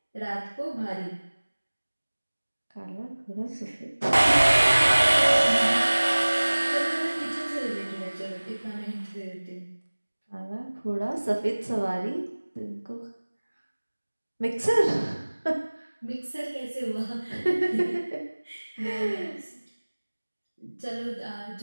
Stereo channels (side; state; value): both; inverted; correlation -1.00